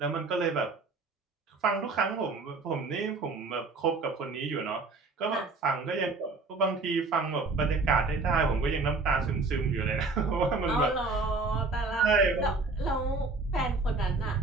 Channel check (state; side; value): quieter; left; 3.7 dB